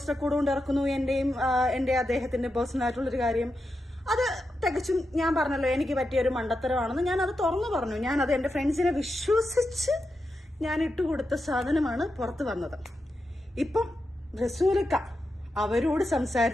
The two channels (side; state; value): both; normal; correlation 0.88